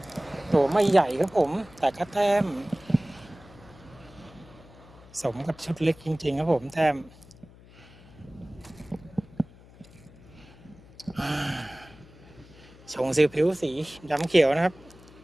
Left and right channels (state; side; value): noise; left; hum, 23 dB below the sound